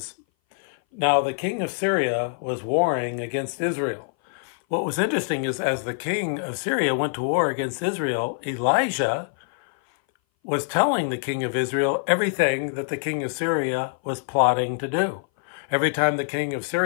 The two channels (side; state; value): right; silent; 59 dB below the other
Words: "Now the king of Syria was warring against Israel." What was interesting is as the king of Syria went to war against Israel, Elijah was telling the king of Israel everything that the king of Syria was plotting to do. Every time the king of